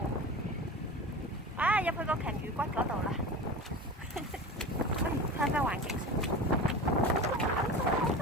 入去個鯨魚骨嗰度啦。睇下環境。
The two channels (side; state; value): both; normal; correlation 0.31